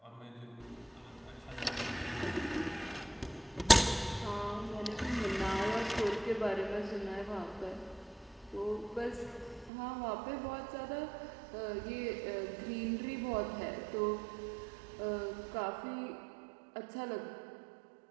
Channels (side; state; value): left; drops out; at 9.7 s